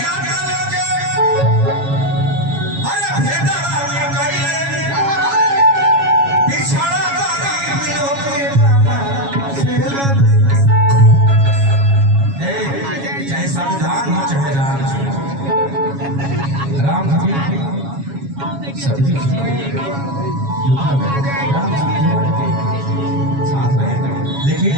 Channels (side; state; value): left; late; 7.2 ms